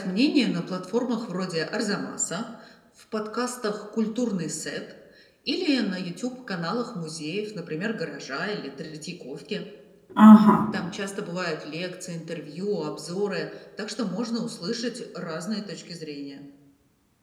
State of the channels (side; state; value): both; identical; correlation 1.00